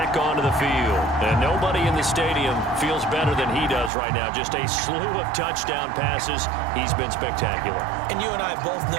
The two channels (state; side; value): drops out; left; at 3.9 s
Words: onto the field. And nobody in the stadium feels better than he does right now. Just a slew of touchdown passes. He's been spectacular. And you and I both